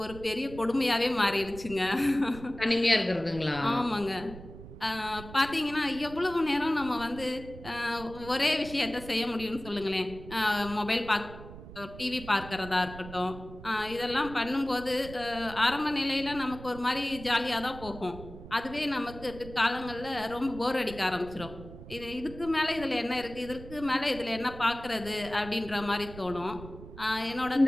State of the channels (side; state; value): right; noise; rumble, 14 dB below the sound